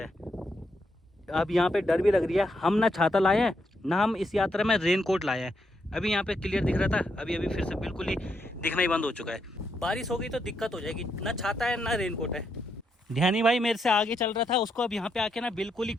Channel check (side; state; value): both; normal; correlation 0.79